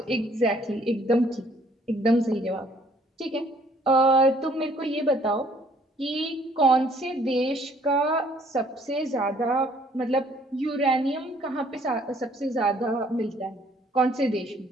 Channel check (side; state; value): both; normal; correlation 0.62